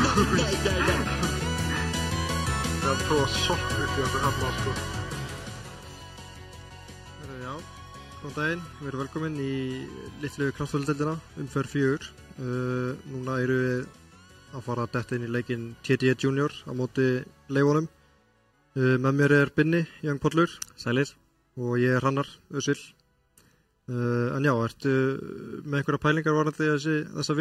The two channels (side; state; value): both; identical; correlation 1.00